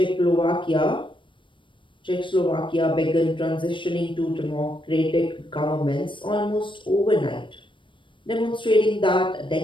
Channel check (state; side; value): late; right; 0.24 ms